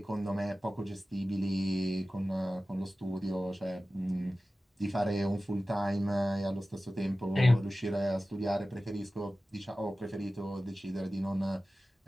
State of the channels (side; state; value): both; normal; correlation 0.96